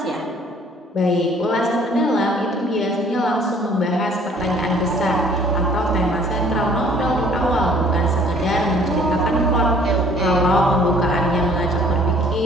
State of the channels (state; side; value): normal; both; correlation 0.56